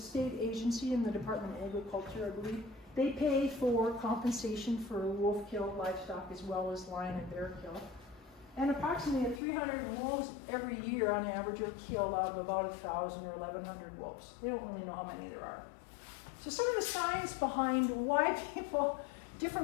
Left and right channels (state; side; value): drops out; right; at 9.4 s